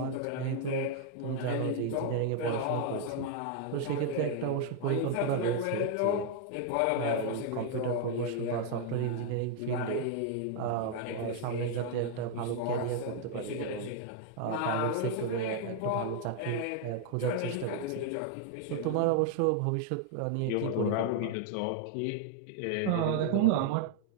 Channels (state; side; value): different; both; correlation 0.00